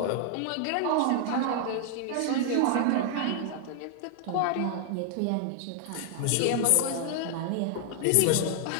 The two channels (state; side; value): different; both; correlation 0.00